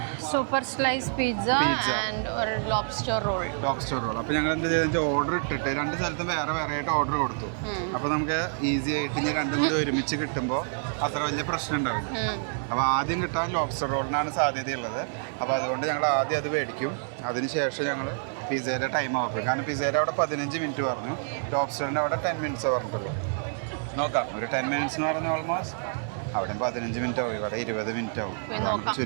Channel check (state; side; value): silent; left; digital silence